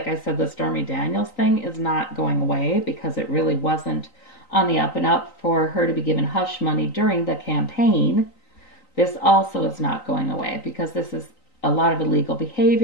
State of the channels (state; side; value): late; right; 3.9 ms